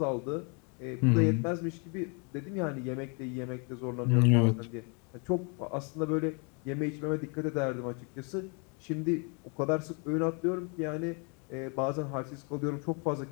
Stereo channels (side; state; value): right; quieter; 35.3 dB